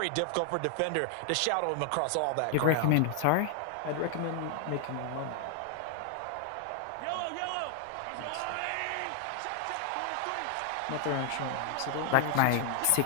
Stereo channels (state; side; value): different; both; correlation 0.00